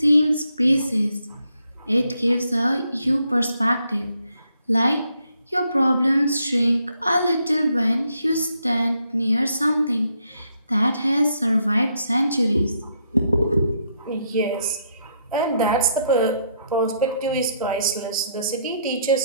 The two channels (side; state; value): both; inverted; correlation -0.74